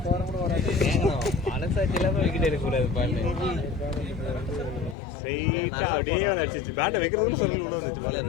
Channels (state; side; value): drops out; right; at 5.0 s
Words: வாரம் கூட வராது. மனசாட்சி இல்லாம விக்கெட் எடுக்கக்கூடாது பாருங்க. ஸ்ட்ரெயிட்டா அப்படியே அடிச்சிச்சு. பேட்டை வைக்கிறதுன்னு சொல்லி உள்ள வந்துச்சு பால்.